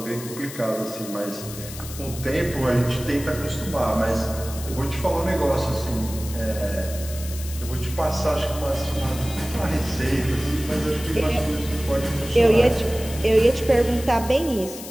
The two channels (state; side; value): noise; left; hiss, 12 dB below the sound